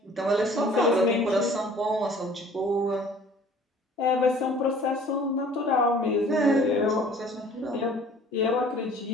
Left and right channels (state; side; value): normal; both; correlation 0.51